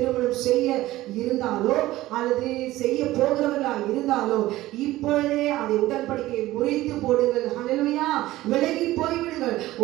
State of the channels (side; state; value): left; quieter; 16.6 dB